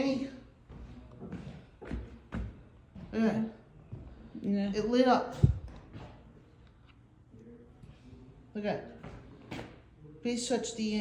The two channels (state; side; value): identical; both; correlation 1.00